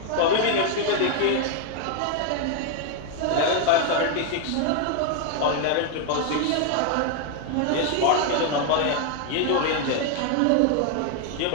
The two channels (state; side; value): different; both; correlation 0.00